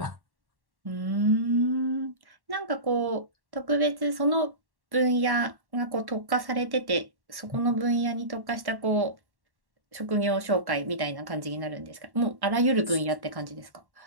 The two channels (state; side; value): late; left; 1.1 ms